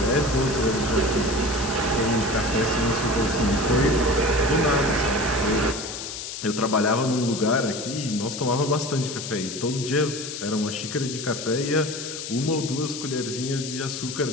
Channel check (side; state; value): left; noise; hiss, 8 dB below the sound